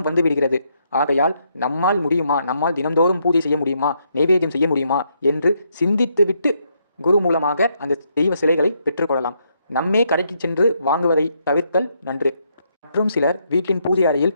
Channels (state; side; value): inverted; both; correlation -0.75